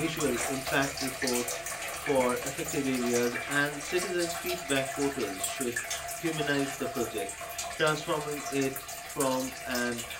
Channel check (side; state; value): both; identical; correlation 1.00